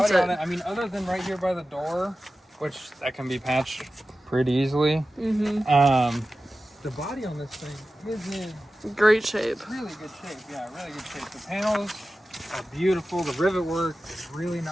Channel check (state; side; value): normal; both; correlation 0.94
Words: body on it. I mean, other than right here by the door, which that can be patched pretty easily. The body on this thing is in Great shape. really good shape. Yeah, really good shape. The panels are beautiful. The rivet work is really